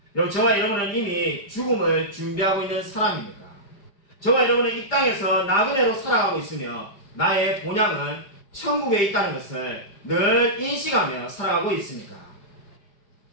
여러분, 저와 여러분은 이미 죽음을 준비하고 있는 사람입니까? 저와 여러분은 이 땅에서 나그네로 살아가고 있으며 나의 본향은 천국에 있다는 것을 늘 인식하며 살아가고 있습니까?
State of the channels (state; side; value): late; right; 5.0 ms